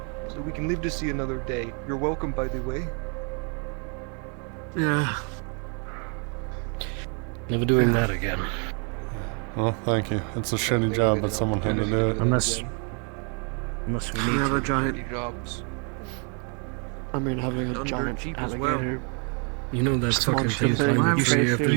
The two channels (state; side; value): quieter; left; 38.4 dB